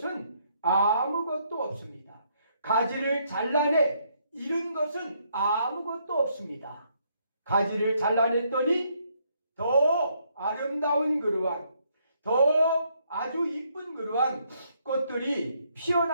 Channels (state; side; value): inverted; both; correlation -0.72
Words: 아무것도 없습니다. 가지를 잘라내 잃은 것은 아무것도 없습니다. 가지를 잘라냈더니 더 아름다운 그러한 더 아주 이쁜 그러한 꽃들이